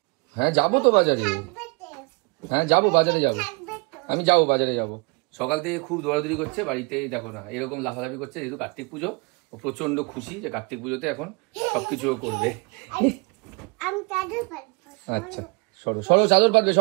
হ্যাঁ যাবো তো বাজারে। হ্যাঁ যাবো বাজারে যাবো, আমি যাবো বাজারে যাবো। সকাল থেকে খুব দৌড়াদৌড়ি করছে বাড়িতে, দেখো না এরকম লাফালাফি করছে, যেহেতু কার্তিক পুজো ও প্রচন্ড খুশি যে কার্তিক পুজোতে এখন সবকিছু করবে। আচ্ছা সরো সরো চাদর পাতবে,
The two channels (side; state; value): left; quieter; 31.5 dB